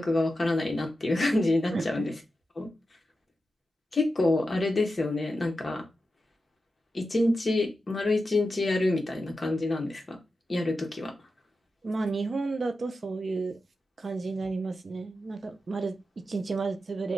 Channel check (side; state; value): both; normal; correlation 0.91